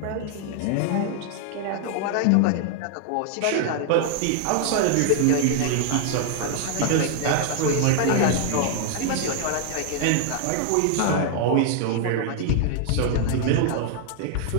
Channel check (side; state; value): both; different; correlation 0.00